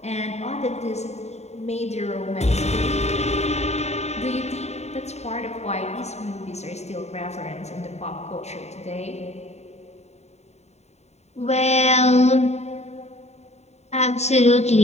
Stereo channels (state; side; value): late; right; 0.32 ms